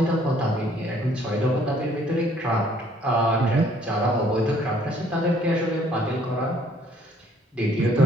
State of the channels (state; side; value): normal; both; correlation 0.62